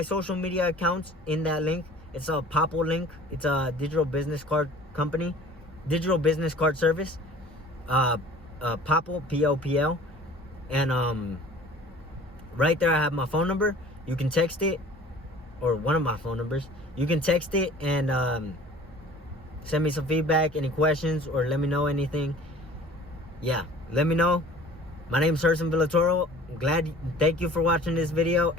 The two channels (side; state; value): both; normal; correlation 0.47